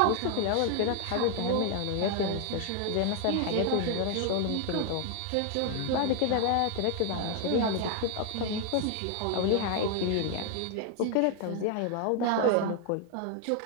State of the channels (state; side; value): different; both; correlation 0.00